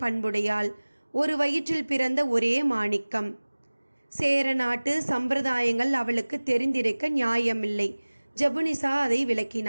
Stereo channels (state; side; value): inverted; both; correlation -1.00